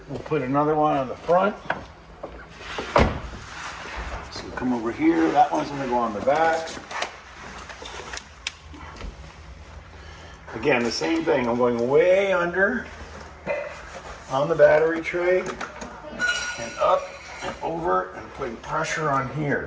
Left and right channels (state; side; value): identical; both; correlation 1.00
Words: We'll put another one on the front. So come over here. That one's going to go on the back. Again, the same thing. I'm going way under on the battery tray and up and over and putting pressure on